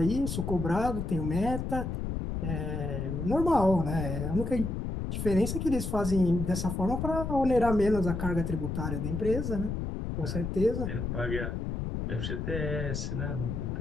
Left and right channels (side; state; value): left; noise; rumble, 3 dB below the sound